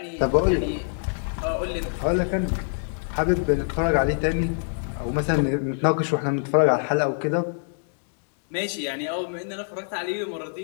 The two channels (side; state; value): right; silent; digital silence